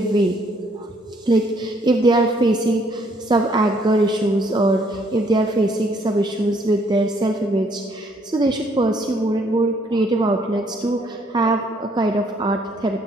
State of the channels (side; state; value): both; normal; correlation 0.66